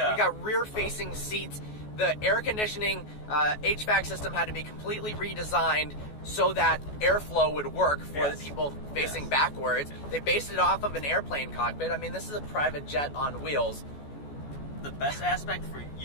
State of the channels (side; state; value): right; late; 14 ms